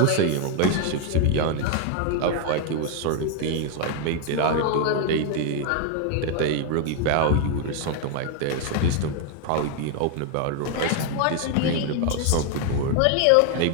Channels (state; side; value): different; both; correlation 0.01